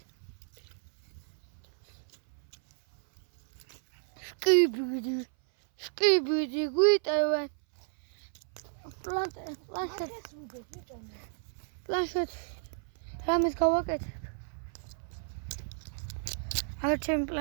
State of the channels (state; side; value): silent; left; 56 dB below the other